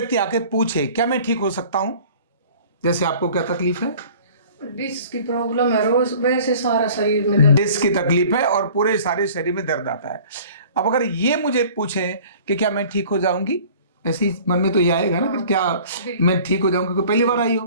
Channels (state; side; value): inverted; both; correlation -0.48